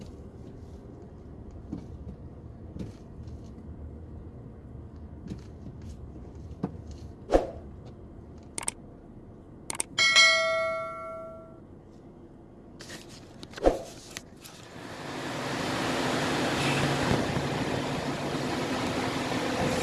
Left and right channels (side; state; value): both; identical; correlation 1.00